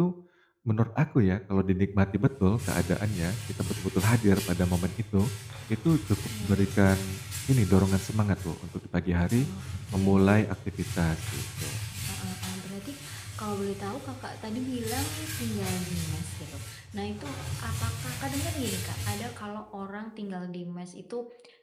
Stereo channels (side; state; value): both; identical; correlation 1.00